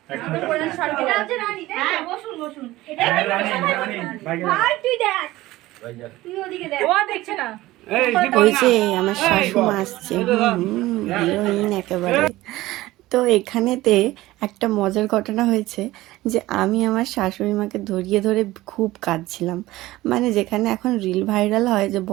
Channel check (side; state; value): left; quieter; 17.5 dB